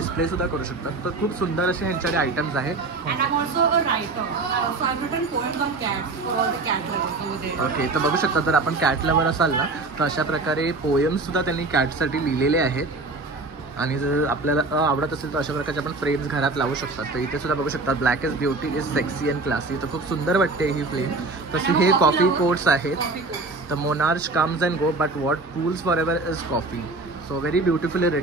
सुद्धा करू शकतात. तर खूप सुंदर असे ह्यांच्याकडे आयटम्स आहेत. And I'm also a writer. So I've written poems on cats for all the cat lovers over there. Okay. तर बघू शकता जर आपण कॅट लवर असाल ना तर अशा प्रकारे पोएम्स सुद्धा त्यांनी कॅटसाठी लिहिलेले आहेत. आणि जर आपल्याला आवडत असेल तर अशा प्रकारचे आपण फ्रेम्स घरात लावू शकतात. तर इथे सुद्धा बघू शकता black is beauty is sexy and classy. तर खूप सुंदर वाटते ही फ्रेम. तसे हे कॉफी कोट्स आहेत. तर monarch comes and go but what cools for ever is coffee. So very beautifully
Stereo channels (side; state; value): left; quieter; 3.4 dB